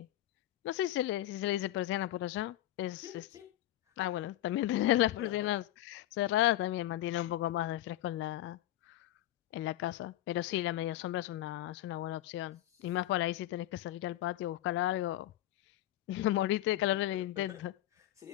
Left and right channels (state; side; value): quieter; right; 14.2 dB